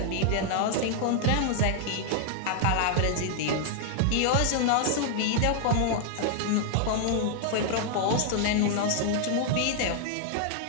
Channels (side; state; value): both; different; correlation 0.00